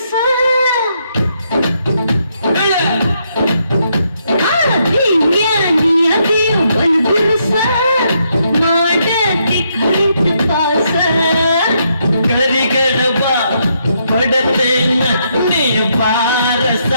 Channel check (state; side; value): inverted; both; correlation -0.76